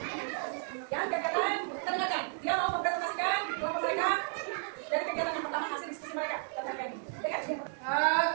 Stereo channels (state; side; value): silent; left; 56 dB below the other